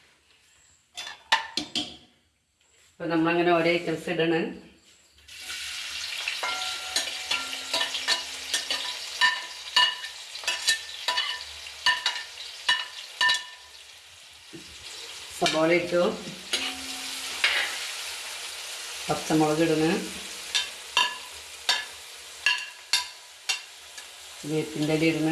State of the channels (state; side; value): identical; both; correlation 1.00